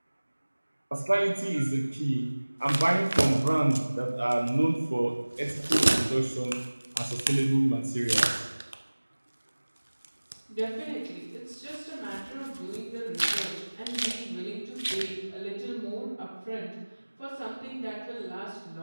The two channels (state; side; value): inverted; both; correlation -1.00